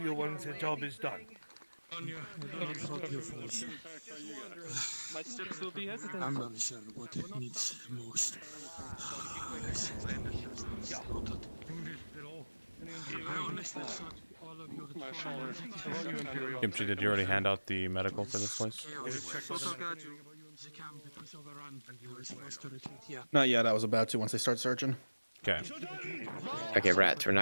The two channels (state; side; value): inverted; both; correlation -1.00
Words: once the job is done. My steps will be hesitant. I'm not sure what it needs most. Kimchi, did you already hand out the medical for this place? Not yet, I was about to once they start searching. Okay. Okay, Rats, we're